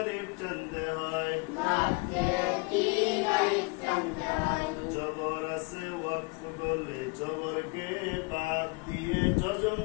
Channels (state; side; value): quieter; right; 28.9 dB